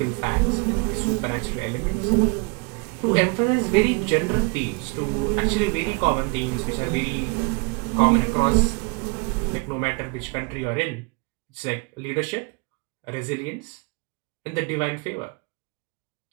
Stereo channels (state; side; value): quieter; left; 30.3 dB